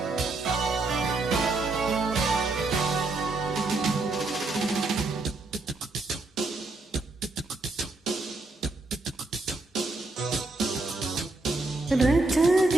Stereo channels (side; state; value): left; quieter; 3.2 dB